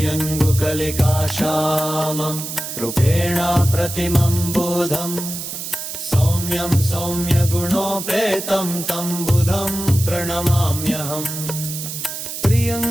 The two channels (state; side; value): noise; right; hiss, 7 dB below the sound